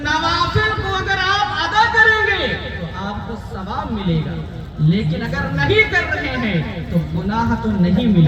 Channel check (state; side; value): identical; both; correlation 1.00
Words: کو اگر آپ ادا کریں گے تو آپ کو ثواب ملے گا، لیکن اگر نہیں کر رہے ہیں تو گناہ تو نہیں